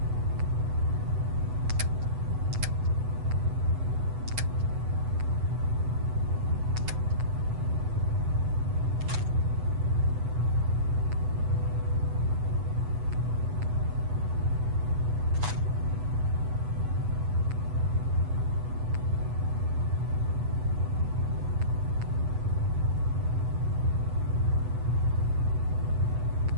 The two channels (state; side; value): late; left; 8.1 ms